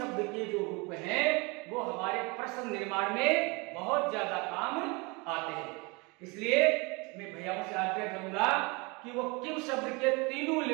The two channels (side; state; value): left; quieter; 28.0 dB